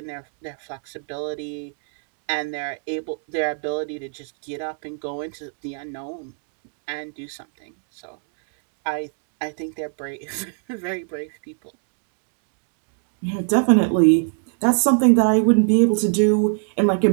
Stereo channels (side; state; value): left; silent; 57 dB below the other